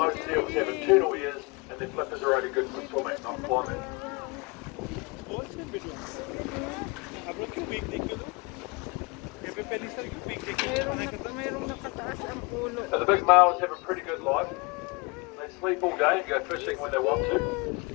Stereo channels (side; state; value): right; quieter; 27.9 dB